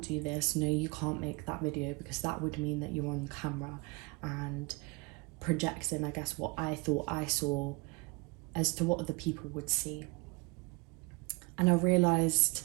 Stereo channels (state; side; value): quieter; left; 27.5 dB